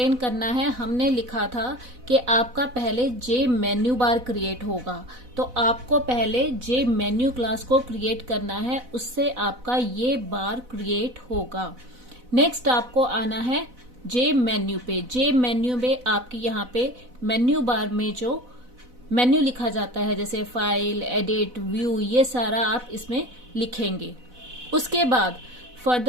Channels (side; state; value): left; late; 4.0 ms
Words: करना है. हमने लिखा था कि आपका पहले जे मेन्यू बार क्रिएट होगा, तो आपको पहले जे मेन्यू क्लास को क्रिएट करना है, उससे आपका ये बार क्रिएट होगा. नेक्स्ट आपको आना है जे मेन्यू पे. जे मेन्यू में आपकी यहाँ पे मेन्यू बार में जो मेन्यू लिखा जाता है जैसे फाइल, एडिट, व्यू, ये सारा आप इसमें लिखेंगे. उसके बाद